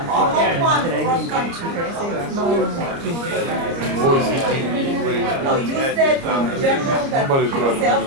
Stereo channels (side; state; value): left; late; 29 ms